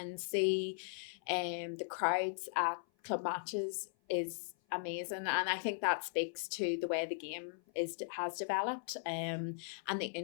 see the crowds at club matches is amazing. And I think that speaks to the way the game has developed, and the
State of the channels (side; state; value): right; silent; 52 dB below the other